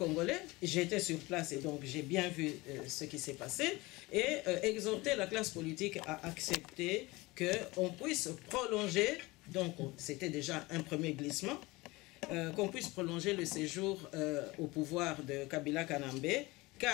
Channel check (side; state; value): right; quieter; 22.0 dB